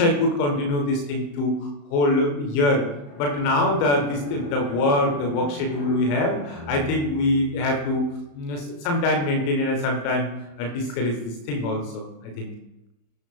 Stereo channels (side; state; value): right; late; 35 ms